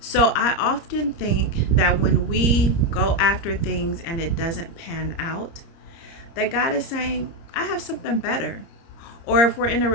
So I often think that when we go after things and it doesn't pan out, that God is saying, I have something better. Or if we're in a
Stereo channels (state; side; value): late; right; 30 ms